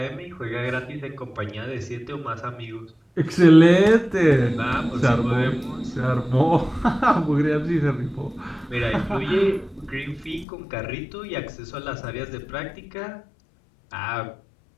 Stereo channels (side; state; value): right; drops out; at 10.5 s